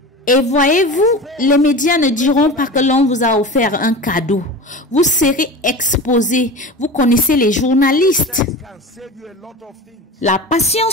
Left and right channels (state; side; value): normal; both; correlation 0.32